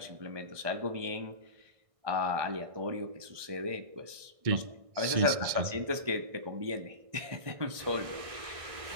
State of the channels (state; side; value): late; left; 1.6 ms